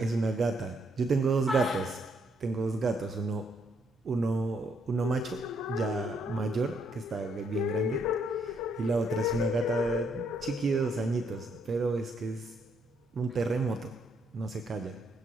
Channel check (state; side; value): normal; both; correlation 0.73